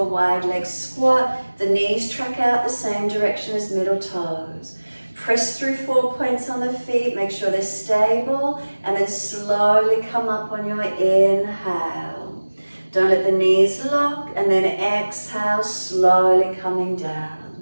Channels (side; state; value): both; inverted; correlation -1.00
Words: wide leg squat. The knees track out the same direction as middle toes. Press through 4 points on the feet, make sure they're stable, and then slowly come up on your inhale. Don't let the knees lock, and then exhale, slowly coming down.